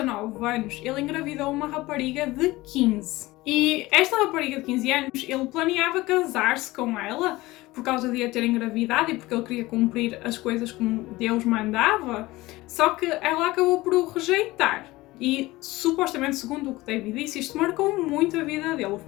anos, ele engravidou uma rapariga de 15. E esta rapariga de 15 anos, ele planeava casar-se com ela por causa de a ter engravidado e porque ele queria cumprir as coisas como Deus mandava. Só que ela acabou por o rejeitar. E, supostamente, segundo o que David disse, isto marcou muito a vida dele, o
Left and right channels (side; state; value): right; quieter; 19.4 dB